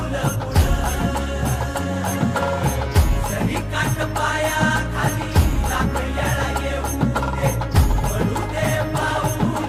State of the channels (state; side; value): identical; both; correlation 1.00